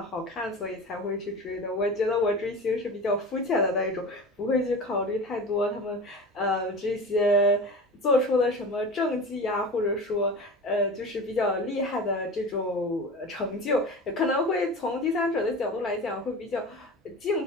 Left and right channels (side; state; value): both; normal; correlation 0.32